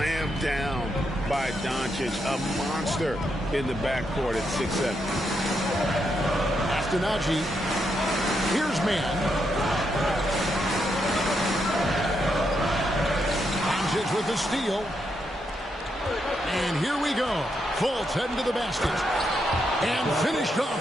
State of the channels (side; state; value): both; normal; correlation 0.81